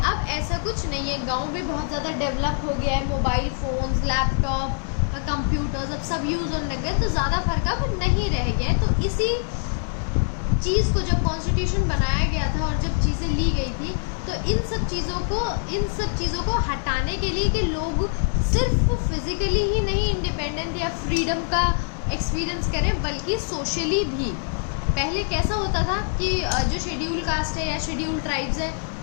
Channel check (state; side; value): silent; right; digital silence